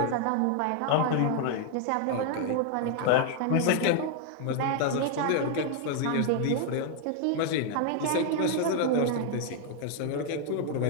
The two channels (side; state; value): both; different; correlation 0.00